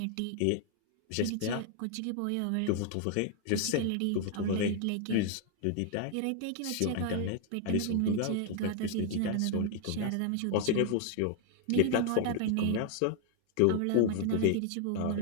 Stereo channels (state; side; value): different; both; correlation 0.00